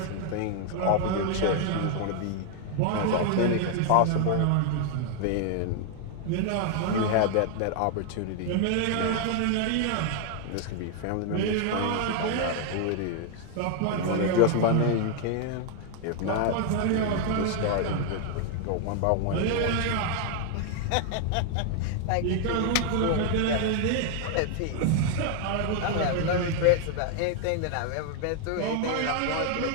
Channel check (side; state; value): both; different; correlation 0.00